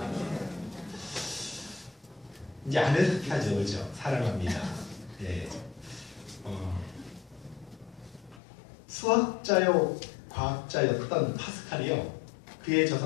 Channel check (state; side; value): drops out; right; at 8.4 s